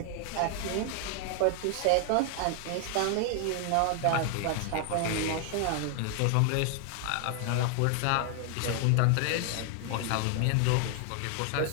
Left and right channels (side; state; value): both; different; correlation 0.00